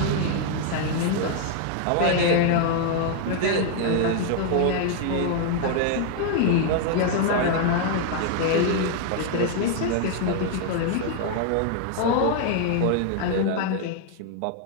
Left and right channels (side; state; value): both; different; correlation 0.00